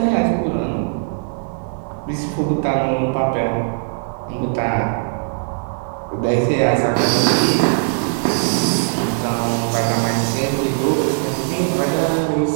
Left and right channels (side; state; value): left; silent; digital silence